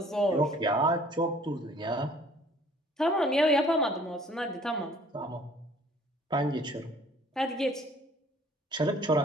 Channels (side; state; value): both; normal; correlation 0.55